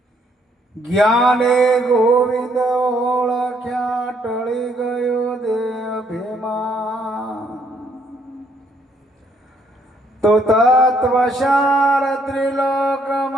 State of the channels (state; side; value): normal; both; correlation 0.69